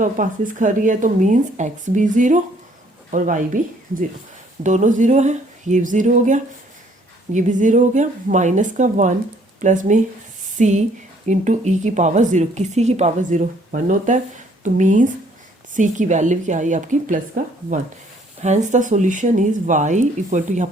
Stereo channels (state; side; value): normal; both; correlation 0.63